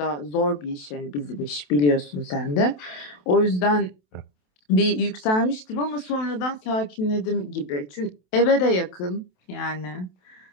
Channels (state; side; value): late; right; 27 ms